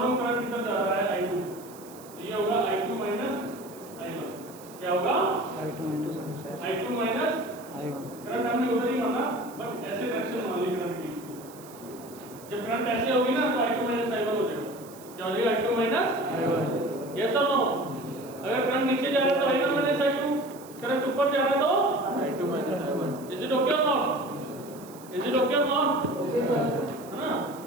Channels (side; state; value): right; noise; hiss, 20 dB below the sound